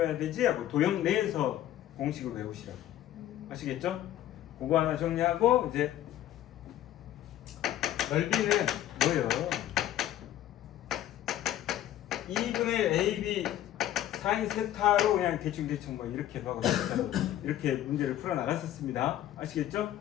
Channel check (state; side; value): quieter; right; 12.6 dB